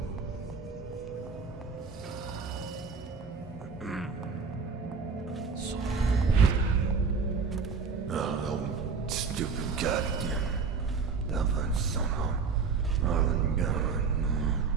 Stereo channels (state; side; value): quieter; left; 5.1 dB